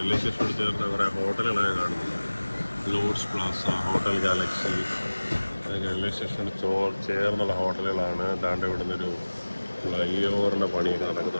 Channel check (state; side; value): inverted; both; correlation -1.00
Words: സ്റ്റേഷനോട് ചേർന്ന് കുറേ ഹോട്ടലുകളൊക്കെ കാണുന്നുണ്ട്. ലോഡ്സ് പ്ലാസ, ഹോട്ടൽ ഗാലക്സി, അതൊക്കെ റെയിൽവേ സ്റ്റേഷനോട് ചേർന്നുള്ള ഹോട്ടലുകളാണ്. ദാണ്ട് ഇവിടെ നിന്നൊരു ഫ്ലൈ ഓവറിൻ്റെ പണിയൊക്കെ